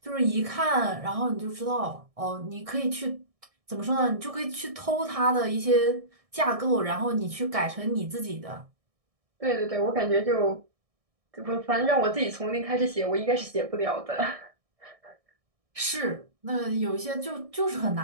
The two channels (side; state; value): left; late; 1.6 ms